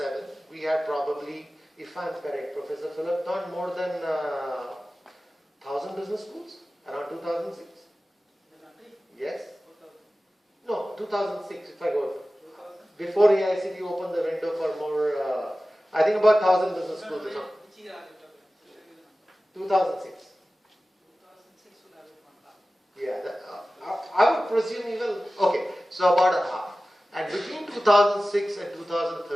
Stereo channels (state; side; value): normal; both; correlation 0.96